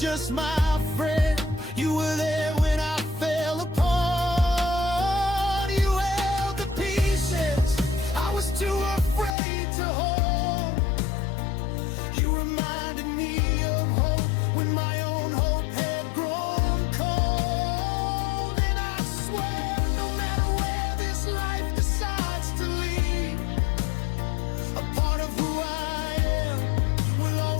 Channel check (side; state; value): right; drops out; at 9.3 s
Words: my friend, you were there when I fell apart. You held the pieces I was too afraid to hold. You reminded me of hope when my own hope had grown cold. And I swear, no matter where this life decides to lead, a part of who I am will